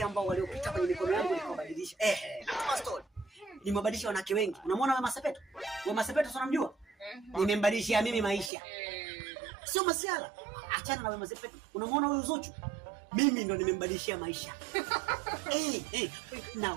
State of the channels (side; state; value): left; drops out; at 8.5 s